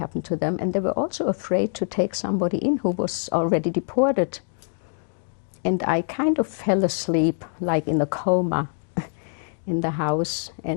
to them, and they were also afraid to take somebody in who was already deported. And I kind of fell asleep, like in a coma, in the house.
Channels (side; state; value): right; silent; digital silence